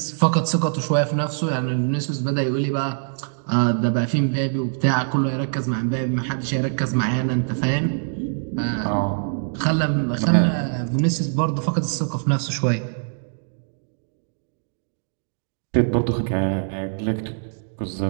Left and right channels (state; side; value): silent; left; digital silence